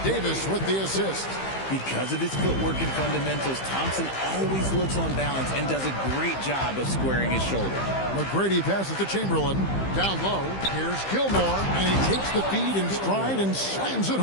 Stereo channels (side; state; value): right; late; 15 ms